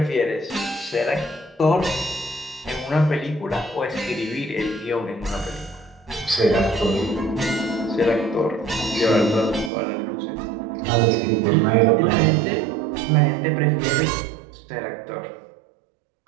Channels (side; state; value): left; drops out; at 9.7 s